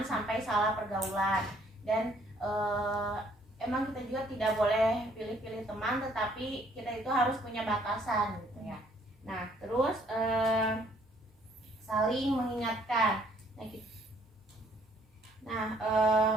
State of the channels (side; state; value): both; normal; correlation 0.63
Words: sampai salah pergaulan. Dan emang kita juga tidak boleh pilih-pilih teman, tetapi kita itu harus punya batasan gitu ya. Nah, terus saling mengingatkan.